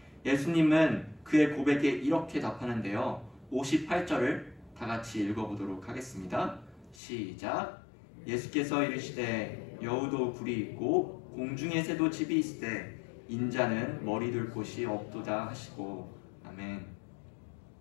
예수님은 그의 고백에 이렇게 답하는데요. 58절을 다 같이 읽어보도록 하겠습니다. 시작. 예수께서 이르시되 여우도 굴이 있고 공중의 새도 집이 있으되 인자는 머리 둘 곳이 없도다 하시고. 아멘.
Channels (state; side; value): drops out; right; at 7.0 s